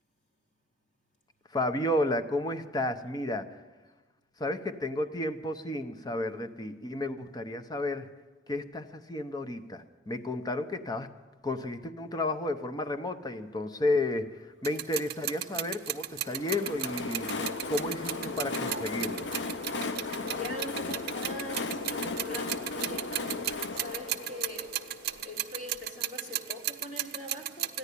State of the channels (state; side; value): normal; both; correlation 0.37